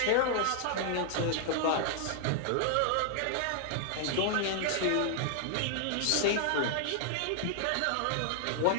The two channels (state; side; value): different; both; correlation 0.00